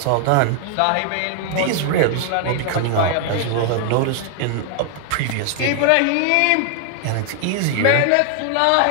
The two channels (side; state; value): both; different; correlation 0.00